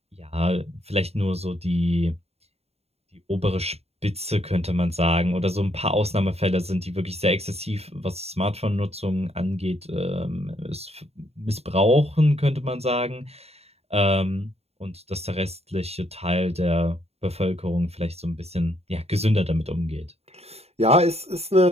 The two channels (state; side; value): late; left; 0.30 ms